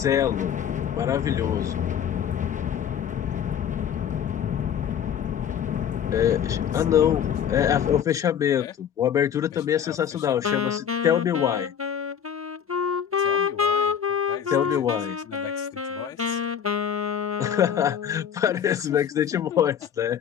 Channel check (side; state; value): right; quieter; 8.6 dB